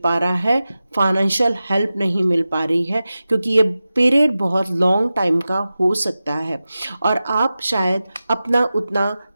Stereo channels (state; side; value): inverted; both; correlation -0.94